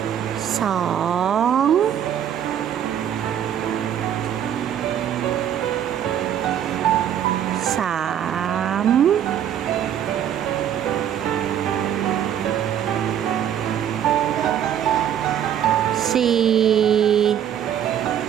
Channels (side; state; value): left; quieter; 9.8 dB